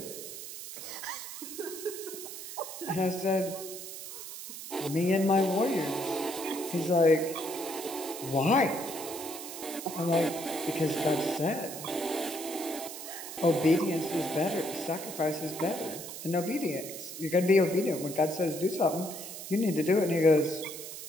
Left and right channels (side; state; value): right; noise; hiss, 10 dB below the sound